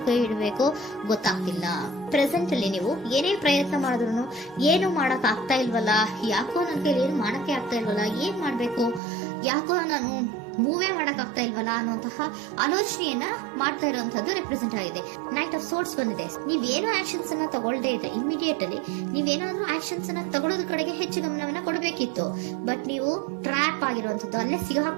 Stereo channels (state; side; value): drops out; left; at 9.0 s